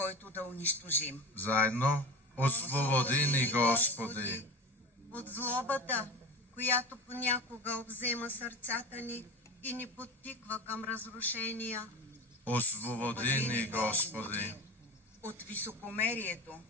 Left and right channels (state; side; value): normal; both; correlation 0.29